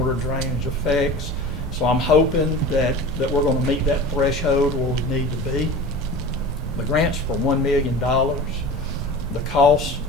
drainage affects. So I'm hoping that we're going to meet that threshold where we need to be. The grant's for $1 million. The cost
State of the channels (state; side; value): normal; both; correlation 0.35